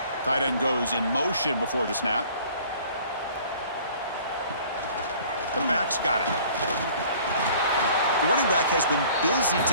Tight end goes in motion before the snap. The back's got it. The running back has been busy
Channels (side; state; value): both; inverted; correlation -0.52